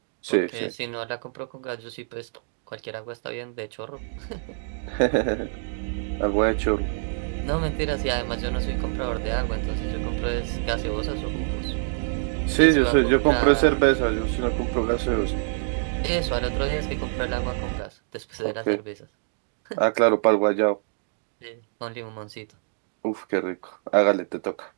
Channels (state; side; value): silent; left; digital silence